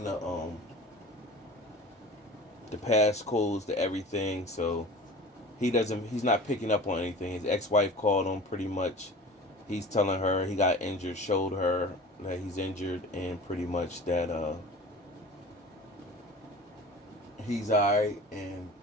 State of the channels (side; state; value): both; normal; correlation 0.39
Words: the passcodes to everything. So he's not picking up on anything. His ex-wife called him pretty much. He's telling her he got injured, showed her that he's injured, and pretty much that he's alright. And